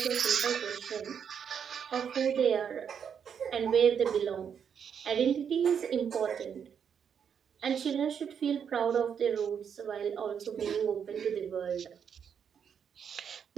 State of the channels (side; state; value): left; quieter; 7.6 dB